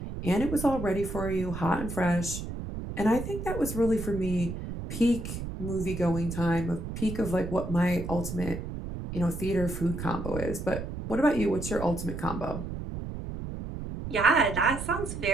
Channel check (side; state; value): right; noise; rumble, 7 dB below the sound